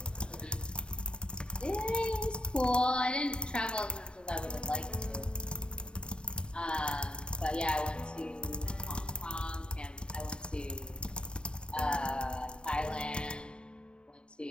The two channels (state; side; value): late; right; 0.051 ms